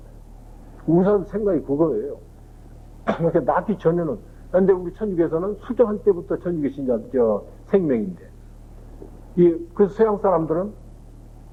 의사 생각이 그거예요. 그러니까 낳기 전에는 근데 우리 천주교에서는 수정할 때부터 천주교 신자 생명인데 그래서 서양 사람들은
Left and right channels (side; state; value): both; identical; correlation 1.00